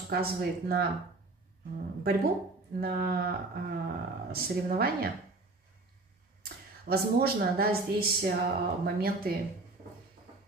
указывает на борьбу, на соревнования. Возможно, да, здесь моменты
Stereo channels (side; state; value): left; quieter; 3.2 dB